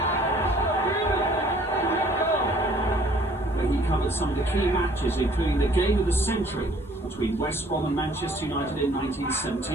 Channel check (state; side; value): normal; both; correlation 0.57